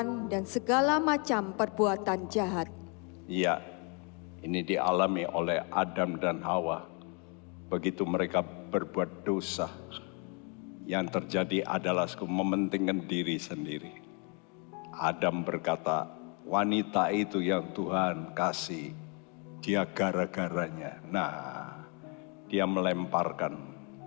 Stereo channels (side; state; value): right; quieter; 34.8 dB